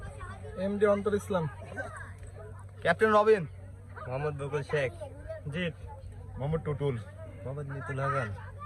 এমডি অন্তর ইসলাম। ক্যাপ্টেন রবিন। মোহাম্মদ বকুল শেখ। জিৎ। মোহাম্মদ টুটুল। মোহাম্মদ নিতুল হাসান।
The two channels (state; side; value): identical; both; correlation 1.00